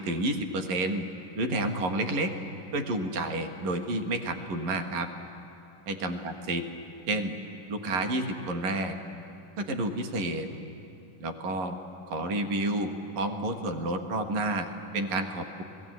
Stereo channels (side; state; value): left; late; 11 ms